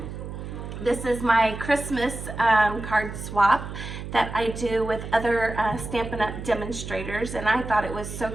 This is my Christmas card swap that I do with other Stampin' Up! Demonstrators, and I thought it was so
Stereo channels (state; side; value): noise; right; hum, 9 dB below the sound